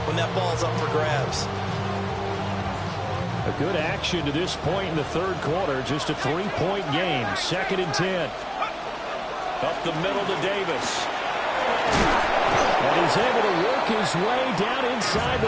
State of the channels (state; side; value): identical; both; correlation 1.00